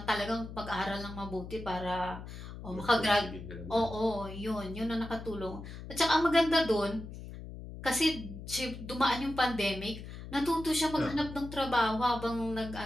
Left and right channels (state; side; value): noise; left; hum, 11 dB below the sound